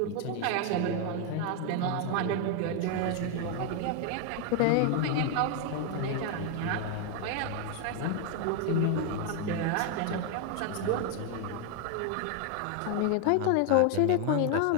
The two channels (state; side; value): different; both; correlation 0.01